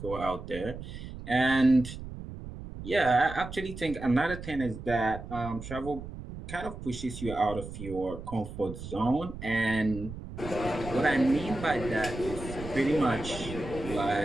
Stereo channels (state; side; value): noise; right; rumble, 10 dB below the sound